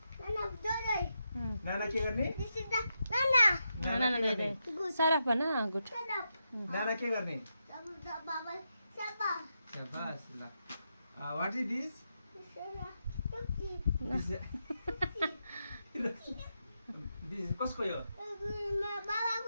नाना के गर्ने? नाना दे दे सरफ बना गुड नाना के गर्ने? शाबास ल. What is this? This is कसको यो?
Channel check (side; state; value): both; inverted; correlation -0.85